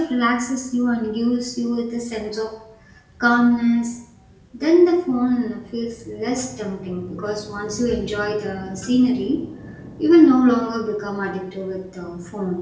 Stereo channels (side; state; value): both; identical; correlation 1.00